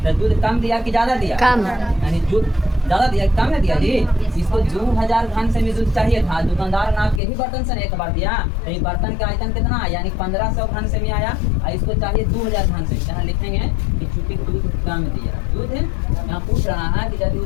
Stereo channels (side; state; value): right; drops out; at 7.2 s